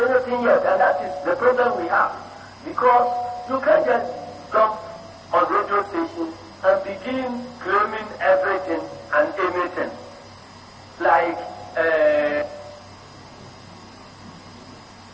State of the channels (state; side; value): identical; both; correlation 1.00